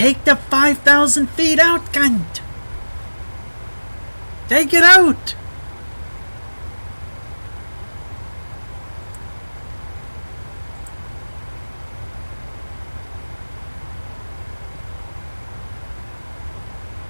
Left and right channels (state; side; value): inverted; both; correlation -1.00